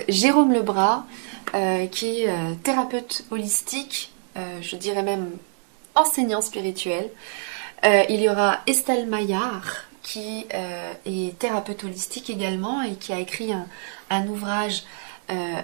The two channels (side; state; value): left; silent; 62 dB below the other